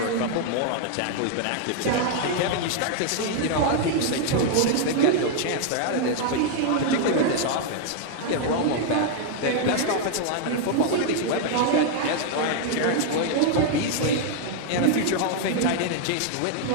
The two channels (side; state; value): both; different; correlation 0.00